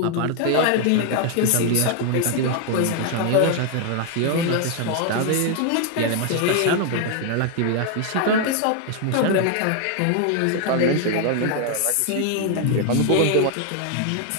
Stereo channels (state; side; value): different; both; correlation 0.00